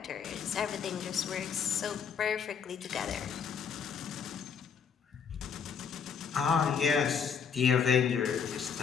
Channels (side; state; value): right; quieter; 6.8 dB